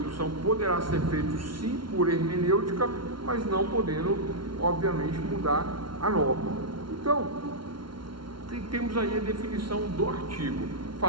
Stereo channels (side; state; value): left; late; 0.73 ms